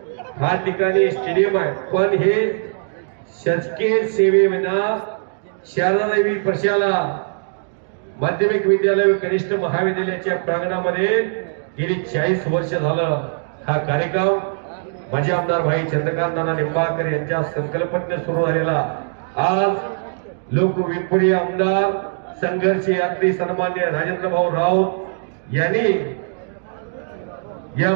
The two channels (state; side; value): silent; left; digital silence